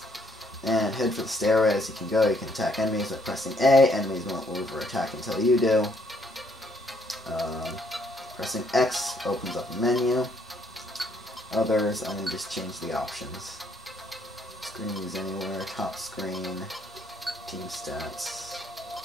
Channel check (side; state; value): both; normal; correlation 0.68